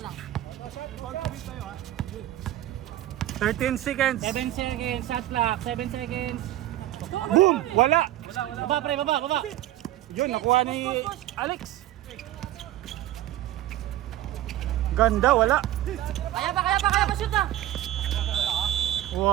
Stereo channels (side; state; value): left; quieter; 13.9 dB